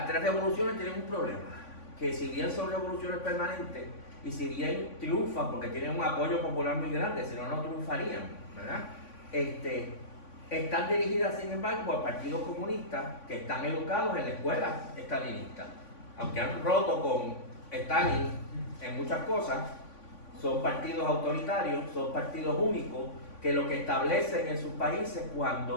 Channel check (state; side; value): late; right; 3.5 ms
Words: tres revoluciones tienen un problema, que si bien son revoluciones permanentes y si bien triunfan porque tienen un apoyo popular muy grande, si no, no triunfarían, ¿verdad? Están dirigidas, sin embargo, por partidos comunistas que están educados en la escuela stalinista. Aunque han roto con Stalin en muchas cosas, son partidos autoritarios, son partidos únicos, que lo que establecen en sus países